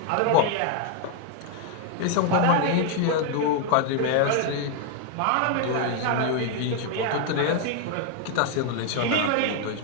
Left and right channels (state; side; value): different; both; correlation 0.00